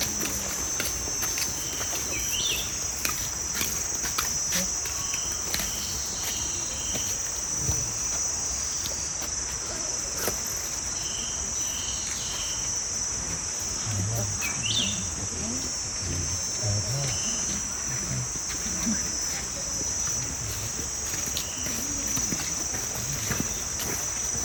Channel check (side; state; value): both; identical; correlation 1.00